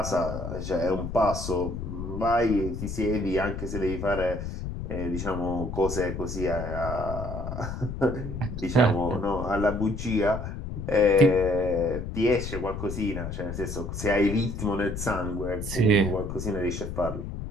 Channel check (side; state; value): left; noise; rumble, 6 dB below the sound